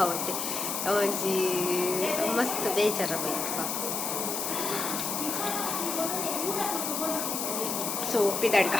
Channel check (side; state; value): left; noise; hiss, 2 dB below the sound